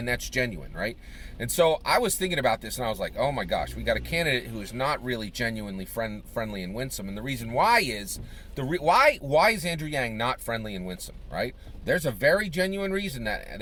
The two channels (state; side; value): identical; both; correlation 1.00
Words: that's genuine, right? And so I was thinking about this, and I was like, oh my gosh, we got a candidate who is not really genuinely friendly and winsome. And the reason why is, why is Andrew Yang not friendly and winsome, right? There's a very genuine reason